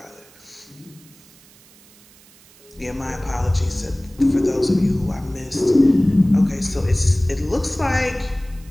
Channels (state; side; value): noise; right; hiss, 26 dB below the sound